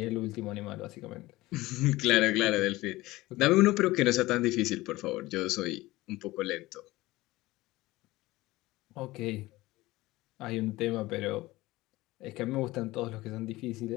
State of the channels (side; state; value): right; quieter; 19.0 dB